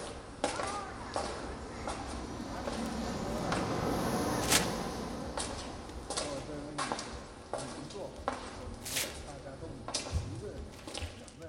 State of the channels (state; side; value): identical; both; correlation 1.00